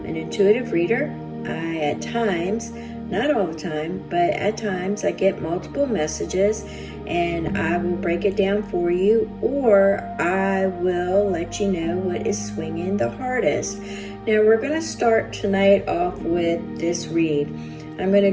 intuitive reader. I at times, not all the time, but at times I get multiple messages and I will break it down for you, or I will let you know what is swinging the hardest. Now we're going to start tonight off with this read. I'm going to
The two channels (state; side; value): identical; both; correlation 1.00